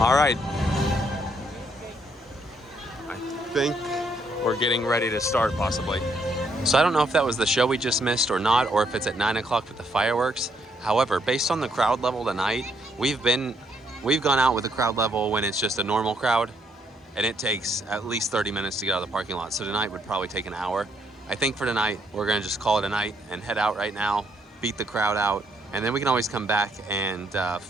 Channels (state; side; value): normal; both; correlation 0.72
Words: right. I think we're getting ready to start, possibly. So I don't know if that was the show we just missed or not, or if it's at 9 o'clock with the fireworks. However, based on the crowd level tonight, we've been we've gone out with a crowd level when it's just a normal crowd, and it takes at least 30 minutes to get out of the parking lot. So tonight would probably take an hour. I think for tonight, we're gonna just call it a night and head out right now, beat the crowd out, and then we can always come back and